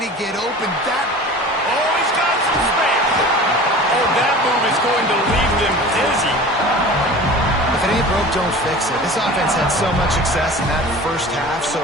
get open. Oh, he's got some space. Oh, that move is going to leave them dizzy. If it ain't broke, don't fix it. This offense had so much success in that first half, so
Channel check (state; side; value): normal; both; correlation 0.39